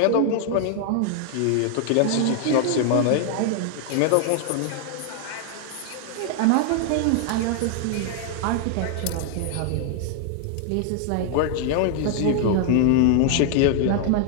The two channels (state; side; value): different; both; correlation 0.00